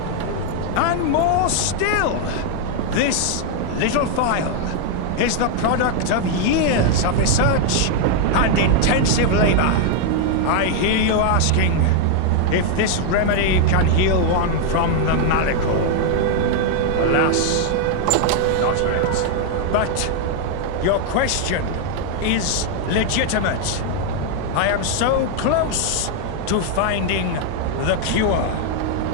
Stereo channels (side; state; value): both; different; correlation 0.00